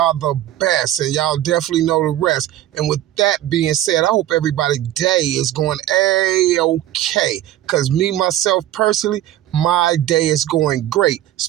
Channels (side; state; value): left; quieter; 13.3 dB